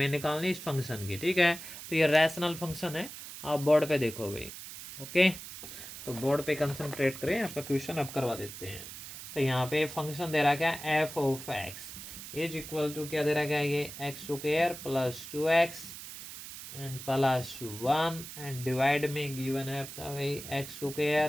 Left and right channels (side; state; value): right; noise; hiss, 11 dB below the sound